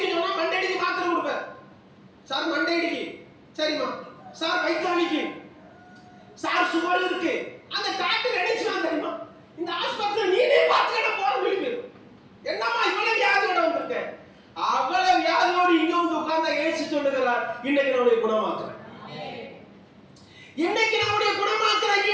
சொன்னா மண்டை இடிக்கு மாத்திரை கொடுப்பேன். சார் மண்டை இடிக்கு, சரிம்மா. சார் வயிற்றாலிக்கு, சார் சுகர் இருக்கு. அந்த டாக்டர் நினைச்சுதான் தெரியுமா? இந்த ஆஸ்பத்திரி நீனே பார்த்துக்கிட்ட போற விழிப்பு. இன்னைக்கு நான் உன்னை குணமாக்குறேன். இன்னைக்கு நான் உன்னை குணமாக்குறேன்.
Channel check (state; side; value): identical; both; correlation 1.00